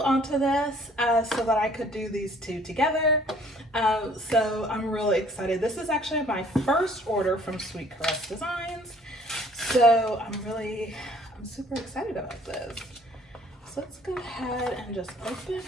this so that I could do these two together. So I'm really excited. This is actually my first order from Sweet Caress Designs. So I'm super excited about this. So let's go ahead and just open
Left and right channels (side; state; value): both; normal; correlation 0.57